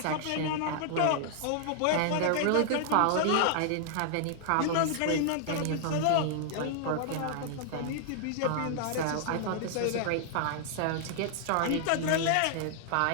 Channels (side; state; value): both; different; correlation 0.00